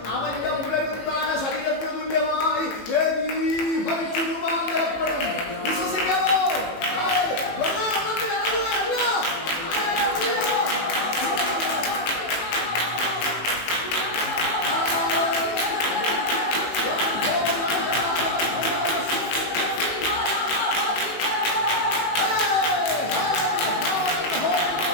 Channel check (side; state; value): right; late; 18 ms